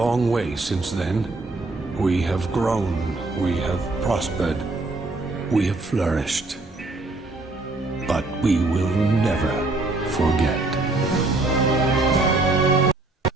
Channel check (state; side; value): quieter; left; 3.1 dB